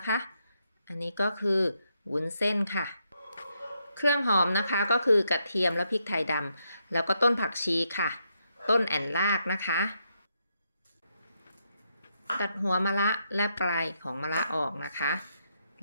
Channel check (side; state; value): both; inverted; correlation -0.79